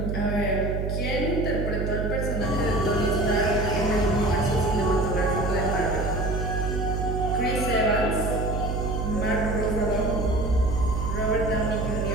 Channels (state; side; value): noise; right; hum, 1 dB below the sound